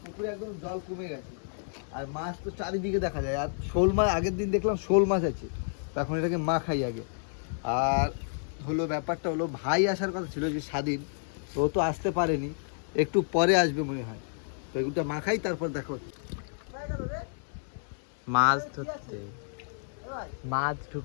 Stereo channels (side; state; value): right; silent; digital silence